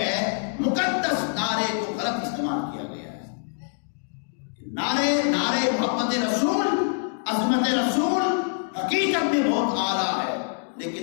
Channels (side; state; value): right; silent; digital silence